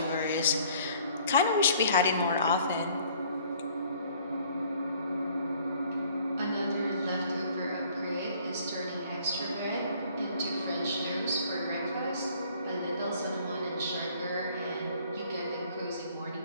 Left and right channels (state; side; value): inverted; both; correlation -0.57